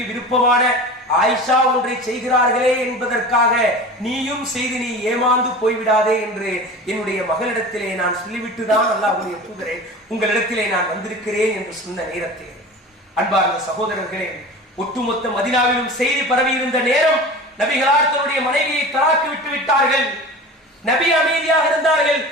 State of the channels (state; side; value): normal; both; correlation 0.35